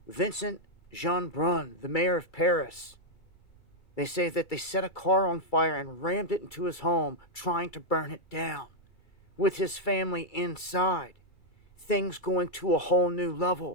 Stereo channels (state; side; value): late; right; 2.3 ms